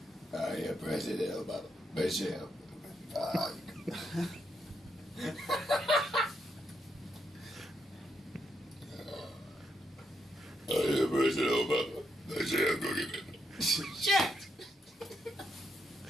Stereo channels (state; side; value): normal; both; correlation 0.79